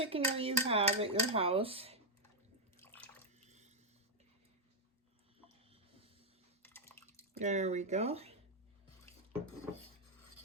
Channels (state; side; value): normal; both; correlation -0.03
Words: you have at your house. There we go.